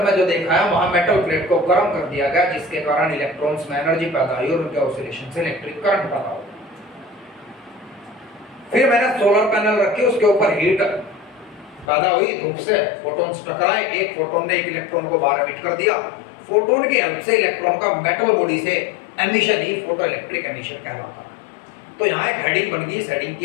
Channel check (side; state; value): right; drops out; at 11.9 s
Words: जो देखा है वहां मेटल प्लेट को गर्म कर दिया गया, जिसके कारण इलेक्ट्रॉन्स में एनर्जी पैदा हुई और उनके ऑसिलेशन से इलेक्ट्रिक करंट पैदा हुआ। फिर मैंने सोलर पैनल रखे, उसके ऊपर हीट पैदा हुई, धूप से फोटॉन्स टकराए, एक फोटोन ने एक इलेक्ट्रॉन को बाहर एमिट कर दिया। फोटोन की हेल्प से इलेक्ट्रॉन का मेटल बॉडी से एमिशन ही फोटो इलेक्ट्रिक एमिशन कहलाता है। तो यहाँ एक हेडिंग बन गई, इस हेडिंग